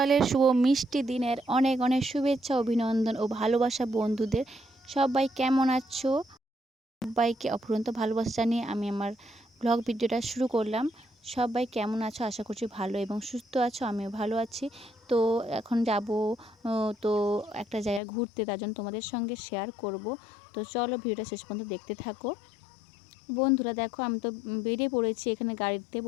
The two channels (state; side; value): drops out; right; at 18.0 s